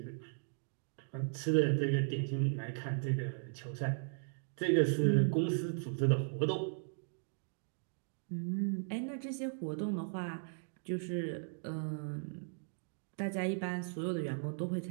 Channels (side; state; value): left; silent; digital silence